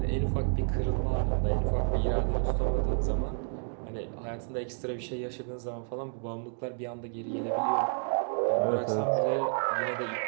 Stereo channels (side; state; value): left; silent; 58 dB below the other